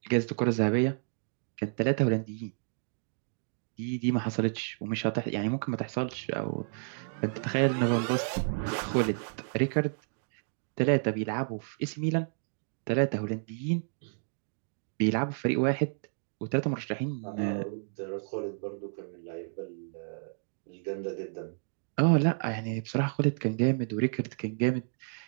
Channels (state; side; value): silent; left; digital silence